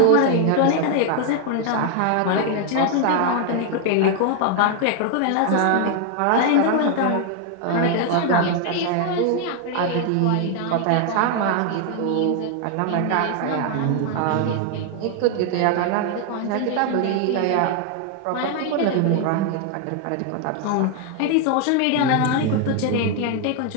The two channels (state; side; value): different; both; correlation 0.00